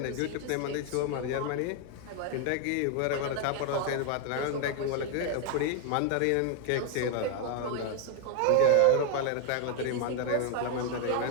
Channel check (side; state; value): both; different; correlation 0.01